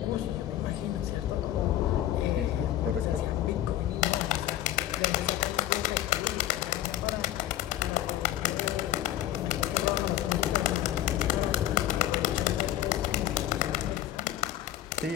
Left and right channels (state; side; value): quieter; right; 12.9 dB